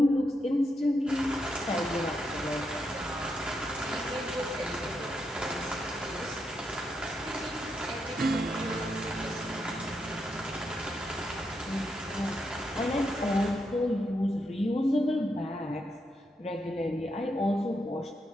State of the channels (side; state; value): both; normal; correlation 0.82